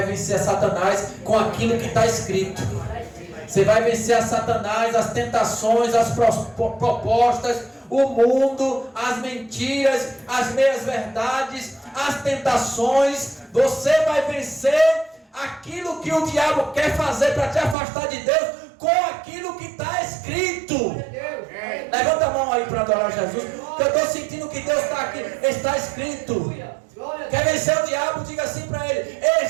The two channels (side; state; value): left; drops out; at 17.8 s